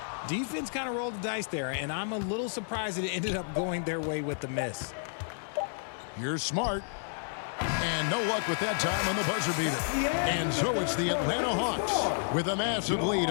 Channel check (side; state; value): right; silent; digital silence